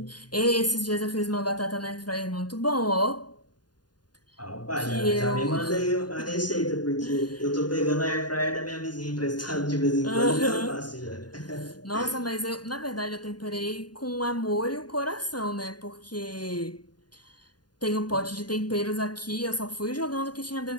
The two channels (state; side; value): late; right; 0.70 ms